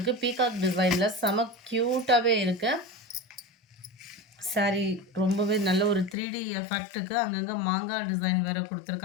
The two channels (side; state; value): right; drops out; at 6.2 s